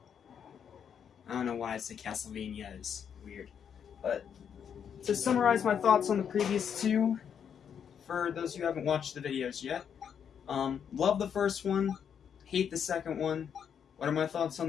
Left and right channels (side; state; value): right; quieter; 7.9 dB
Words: I don't know why I said Castlevania, is weird. But to summarize my thoughts on the previous two, for those who haven't watched the videos yet, love the first one, hate the second one. What are my thoughts